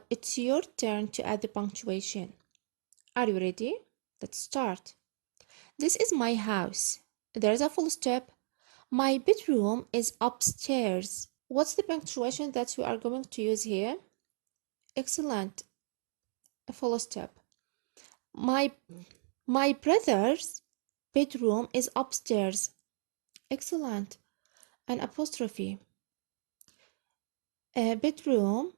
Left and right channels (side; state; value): left; silent; digital silence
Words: it's your turn to add the punctuation. Are you ready? Let's start. This is my house. There's a full stop. My bedroom is upstairs. What's the punctuation that you are going to use here? Excellent. A full stop. My brother's bedroom is upstairs. Excellent. An apostrophe. A bedroom